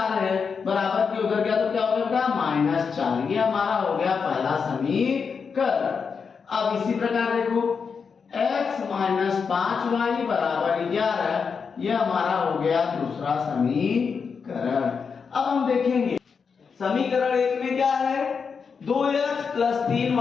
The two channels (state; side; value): quieter; right; 5.8 dB